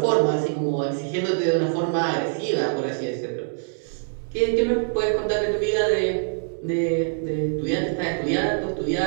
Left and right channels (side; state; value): left; silent; digital silence